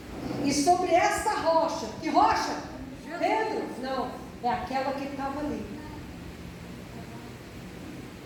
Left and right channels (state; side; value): identical; both; correlation 1.00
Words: E sobre esta rocha, que rocha? Pedro? Não, é aquela que estava ali.